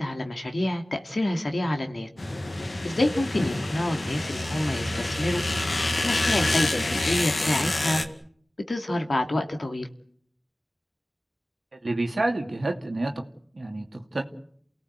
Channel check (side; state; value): both; normal; correlation 0.97